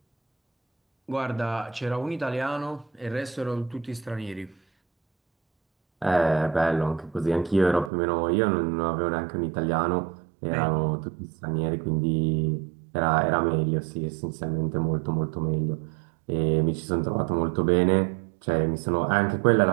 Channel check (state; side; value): drops out; left; at 7.9 s